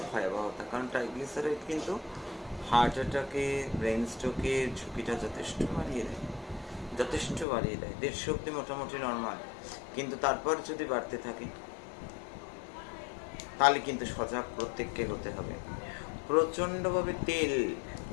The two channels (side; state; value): right; drops out; at 7.5 s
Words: ভয়াবহতা, কারণ ট্রাইগ্লিসারাইড কিন্তু হার্ট অ্যাটাকে, ব্রেন স্ট্রোকের ঝুঁকিটা যথেষ্ট বাড়িয়ে দেয়, যথেষ্ট বাড়িয়ে দেয়। 150 অব্দি মোটামুটি নর্মাল, কিন্তু তারপর যদি বাড়তে থাকে তাহলে কিন্তু সজাগ প্রত্যেককে হতে হবে। প্রচণ্ডভাবে তেল,